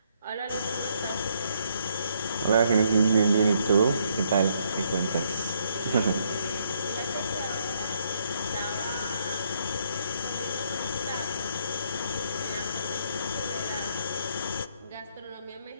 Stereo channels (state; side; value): inverted; both; correlation -0.71